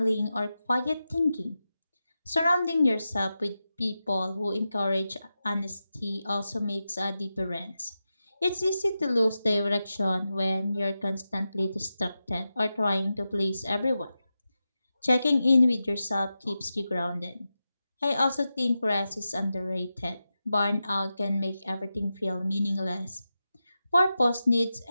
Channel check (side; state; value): both; inverted; correlation -0.91